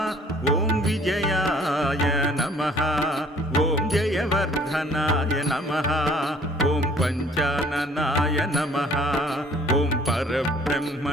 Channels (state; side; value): normal; both; correlation 0.57